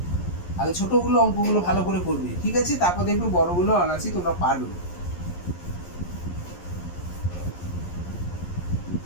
আগে ছোটগুলো অঙ্কগুলো ভালো করে করবে, ঠিক আছে, তারপর দেখবে বড়গুলো অনায়াসই তোমরা পারবে।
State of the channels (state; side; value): late; right; 11 ms